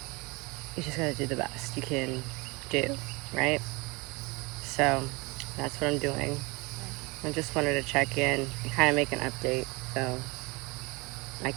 you just gotta do the best you can do, right? So that's what I'm doing. I just wanted to check in and kind of make an update so I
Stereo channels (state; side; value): quieter; left; 26.3 dB